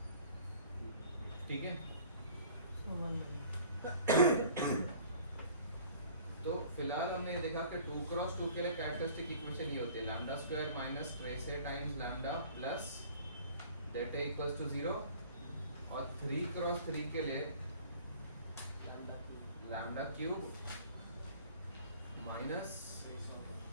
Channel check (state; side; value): inverted; both; correlation -0.49